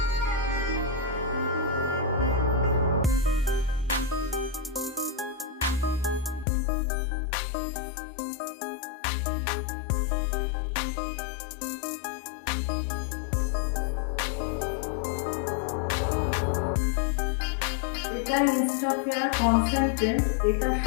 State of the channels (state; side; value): drops out; right; at 6.5 s